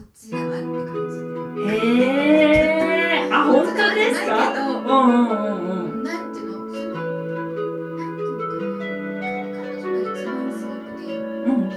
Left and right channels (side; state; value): both; identical; correlation 1.00